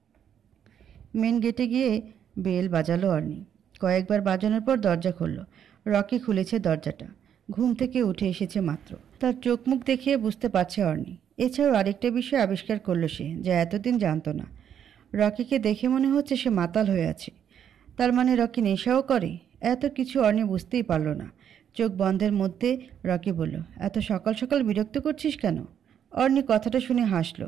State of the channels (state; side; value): quieter; left; 9.0 dB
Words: মেন গেটে গিয়ে বেল বাজালো অর্নি। কয়েকবার বাজানোর পর দরজা খুলল। রকি খুলেছে দরজাটা। ঘুম থেকে উঠে এসেছে মাত্র। তার চোখ মুখ দেখিয়ে বুঝতে পারছে অর্নি। এছাড়াও আরেকটা বিষয় আবিষ্কার করলো সে, যা এতদিন জানতো না। রকিকে দেখে মনে হচ্ছে সে মাতাল হয়ে আছে। তার মানে রকি নেশাও করে? এত কিছু অর্নি বুঝতেই পারল না। চোখ বন্ধের মধ্যে রকি বলল, এত সকাল সকাল বিরক্ত করছিস কেন? অর্নি কথাটা শুনে হাসলো,